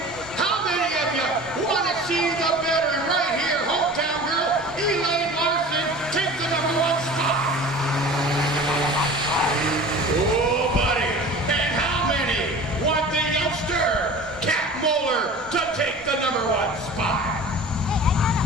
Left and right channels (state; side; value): normal; both; correlation 0.39